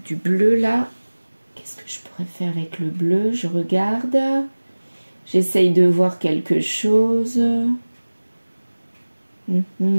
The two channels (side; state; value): both; inverted; correlation -1.00